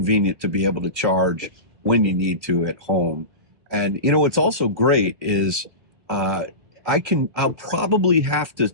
to be able to charge when you need to at home. And you know, what's also great is I'll probably have to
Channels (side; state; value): left; late; 1.8 ms